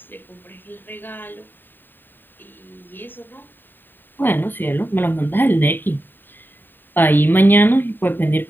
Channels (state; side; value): late; right; 0.093 ms